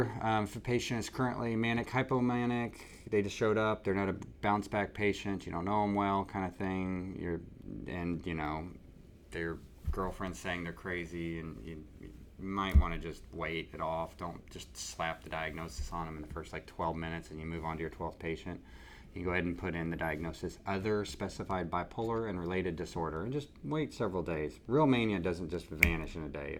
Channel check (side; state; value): both; identical; correlation 1.00